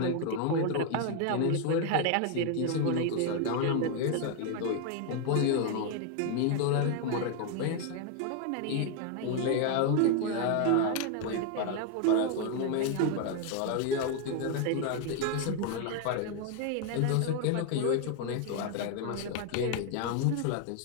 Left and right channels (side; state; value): both; different; correlation 0.01